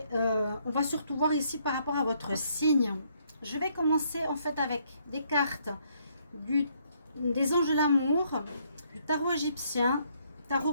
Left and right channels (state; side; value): inverted; both; correlation -0.70